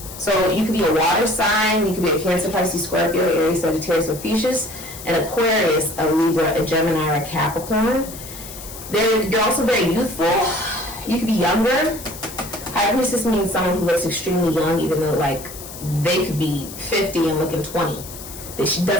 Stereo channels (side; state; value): left; noise; hiss, 13 dB below the sound